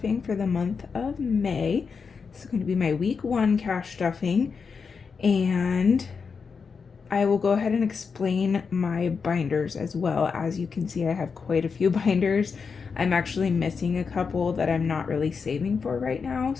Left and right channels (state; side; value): quieter; right; 5.5 dB